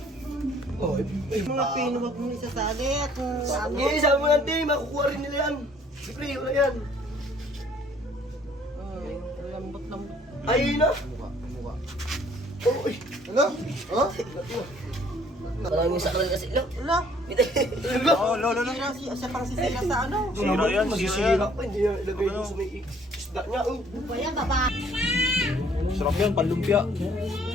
Oh, mga pino, wag mo isasali at Sige, sabi mo lang, Tim, makukuha rin nila yan. Siyempre, wala yan. lambot-lambot. Ay, na. Uy. Ano? Ha? Maraming sakal kasi. Lo. Wala. Oh, lo. Siya pang sisira sa ano. Sira yan, Masisira pa, hindi niya ilagay doon sa may isda niya. Oh. Pa yan, baba. Sarap yan, panlumpia.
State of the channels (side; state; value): both; normal; correlation 0.59